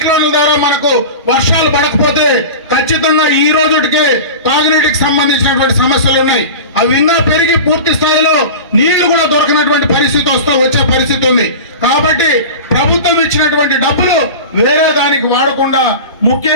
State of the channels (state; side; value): inverted; both; correlation -0.31